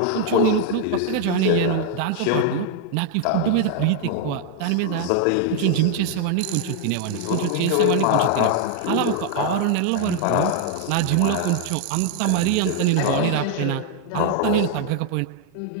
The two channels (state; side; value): different; both; correlation 0.00